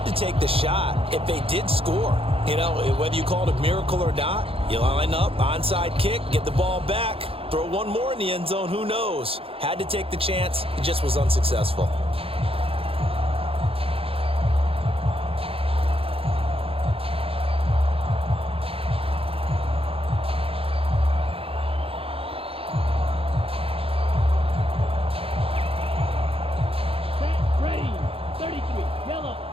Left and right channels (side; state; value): left; late; 0.27 ms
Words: to take the shot if they did score. You know, whether you call it a miracle or not, you line up, onside kick, get the ball back, throw one more in the end zone, who knows? Had to take the chance, it just was unsuccessful.